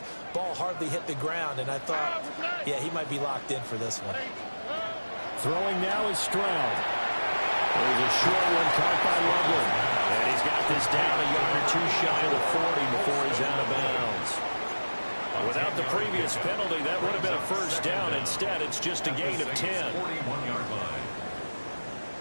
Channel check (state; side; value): inverted; both; correlation -1.00